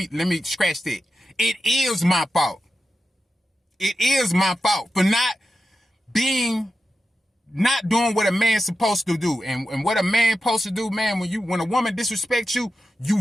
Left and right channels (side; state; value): both; normal; correlation 0.90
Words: me scratch that. It is my fault. It is my fault for not doing what a man's supposed to do. And what a man supposed to do, man, when a woman disrespects you,